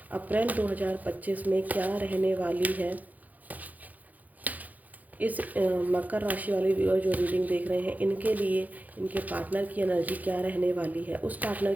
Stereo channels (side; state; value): left; late; 0.080 ms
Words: अप्रैल 2025 में क्या रहने वाली है इस मकर राशि वाले व्यूअर जो रीडिंग देख रहे हैं, इनके लिए इनके पार्टनर की एनर्जी क्या रहने वाली है, उस पार्टनर